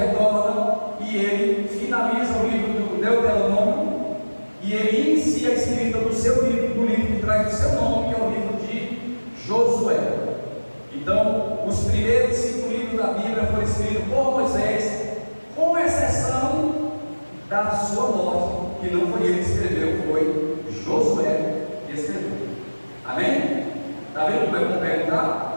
e ele finaliza o livro do Deuteronômio e ele inicia a escrita do seu livro, do livro que traz o seu nome, que é o livro de Josué. Então, os primeiros 5 livros da Bíblia foram escritos por Moisés, com exceção da sua morte, que não foi ele que escreveu, foi Josué que escreveu. Amém? Está vendo como é bom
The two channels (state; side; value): inverted; both; correlation -1.00